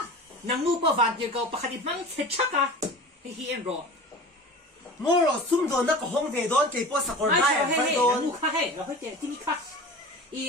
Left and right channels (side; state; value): both; normal; correlation 0.36